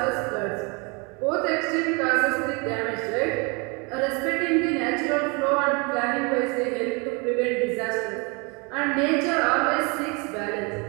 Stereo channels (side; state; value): left; quieter; 30.8 dB